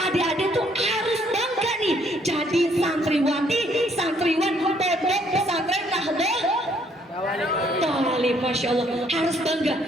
tuh harus bangga nih jadi santriwati, santriwan pondok pesantren Nahdlatul Thalib. Masya Allah, harus bangga.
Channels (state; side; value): normal; both; correlation 0.66